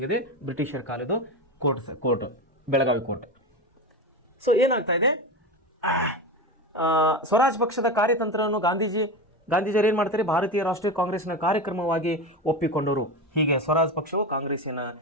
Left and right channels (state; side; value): normal; both; correlation 0.21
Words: ಇದೆ, ಬ್ರಿಟಿಷರ ಕಾಲದ ಕೋರ್ಟ್ ಬೆಳಗಾವಿ ಕೋರ್ಟ್. ಸೊ ಏನಾಗ್ತಾ ಇದೆ, ಸ್ವರಾಜ್ ಪಕ್ಷದ ಕಾರ್ಯತಂತ್ರವನ್ನು ಗಾಂಧೀಜಿಯವರು ಏನು ಮಾಡ್ತಾರೆ, ಭಾರತೀಯ ರಾಷ್ಟ್ರೀಯ ಕಾಂಗ್ರೆಸ್ನ ಕಾರ್ಯಕ್ರಮವಾಗಿ ಒಪ್ಪಿಕೊಂಡರು. ಹೀಗೆ ಸ್ವರಾಜ್ ಪಕ್ಷವು